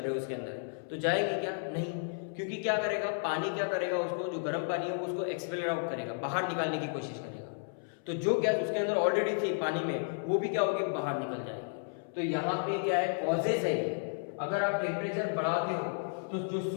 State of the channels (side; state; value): right; silent; 56 dB below the other